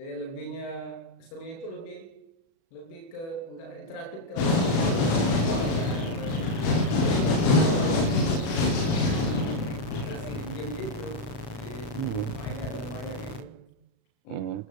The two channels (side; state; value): right; late; 37 ms